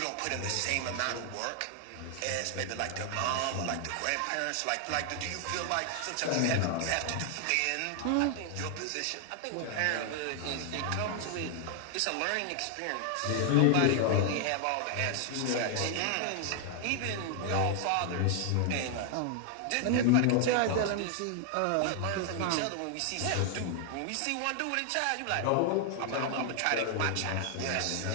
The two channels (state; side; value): different; both; correlation 0.00